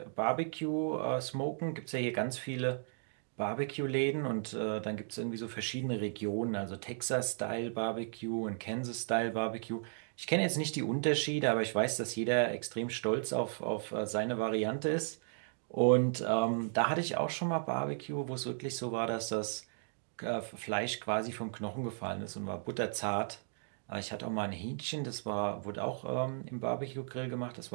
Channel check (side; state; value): left; silent; digital silence